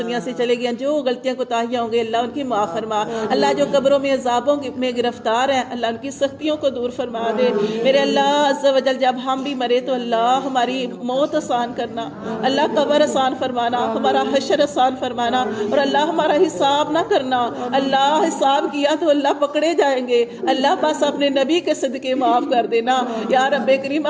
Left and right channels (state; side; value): identical; both; correlation 1.00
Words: سے چلے گئے، جو غلطیاں کوتاہیاں ہوں گے اللہ ان کی معاف فرما، اللہ جو قبروں میں عذابوں میں گرفتار ہیں اللہ ان کی سختیوں کو دور فرما دے میرے اللہ عز و جل۔ جب ہم بھی مرے تو اللہ ہماری موت آسان کرنا، اللہ قبر آسان فرمانا، ہمارا حشر آسان فرمانا، اور اللہ ہمارا حساب نہ کرنا، اللہ حساب کیا تو اللہ پکڑے جائیں گے، اللہ بس اپنے نبی کے صدقے معاف کر دینا یا رب کریم،